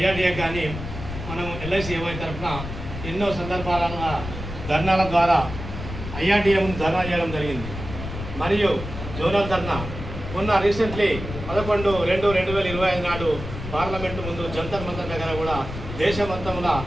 కానీ మనం ఎల్ఐసి ఏవై తరఫున ఎన్నో సందర్భాల ధర్నాల ద్వారా ఐఆర్డీఏ ముందు ధర్నా చేయడం జరిగింది. మరియు జోనల్ ధర్నా మొన్న రీసెంట్లీ 11/2/2025 నాడు పార్లమెంటు ముందు జంతర్ మంతర్ దగ్గర కూడా దేశమంతంలో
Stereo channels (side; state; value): left; noise; rumble, 8 dB below the sound